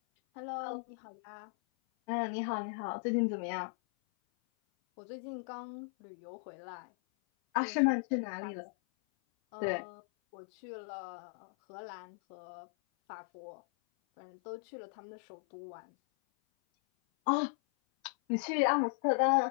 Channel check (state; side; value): silent; right; 53 dB below the other